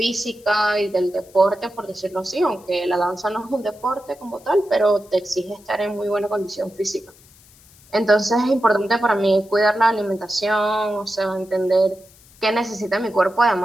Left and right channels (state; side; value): noise; left; hiss, 26 dB below the sound